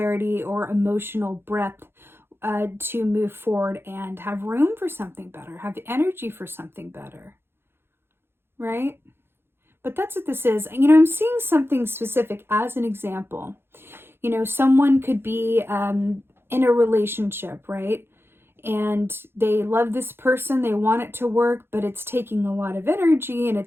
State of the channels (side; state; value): left; late; 0.11 ms